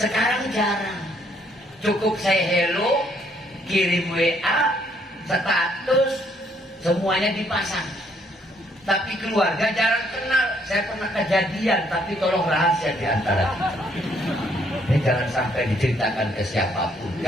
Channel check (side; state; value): both; normal; correlation 0.68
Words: jarang. Cukup saya hello, kirim WA, status, semuanya dipasang. Tapi keluarga jarang kenal. Saya pernah kejadian, tapi tolong rahasia di antara kita. Ini jangan sampai diceritakan ke siapapun.